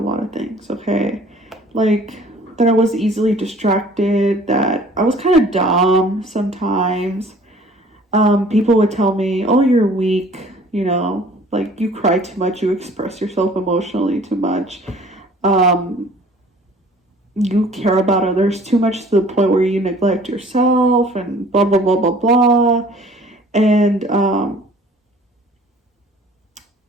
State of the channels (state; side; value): normal; both; correlation 0.52